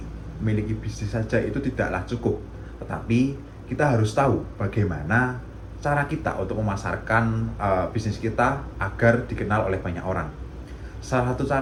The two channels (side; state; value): both; identical; correlation 1.00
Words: memiliki bisnis saja itu tidaklah cukup, tetapi kita harus tahu bagaimana cara kita untuk memasarkan bisnis kita agar dikenal oleh banyak orang. Salah satu